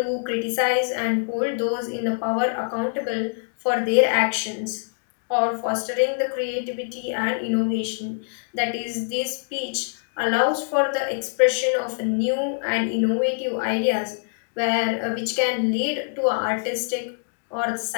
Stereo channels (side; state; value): right; silent; digital silence